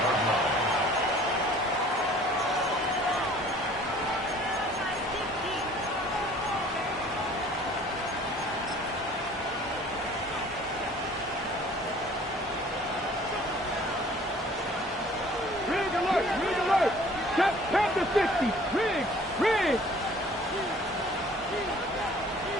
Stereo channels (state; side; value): normal; both; correlation 0.52